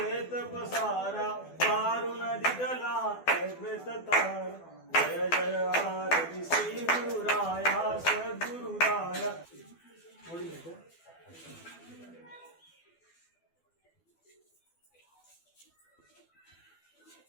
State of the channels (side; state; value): right; late; 12 ms